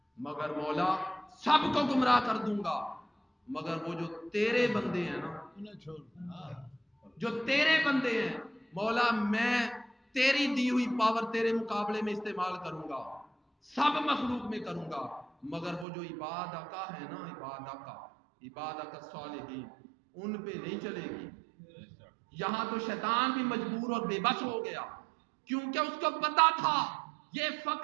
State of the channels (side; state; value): left; drops out; at 15.9 s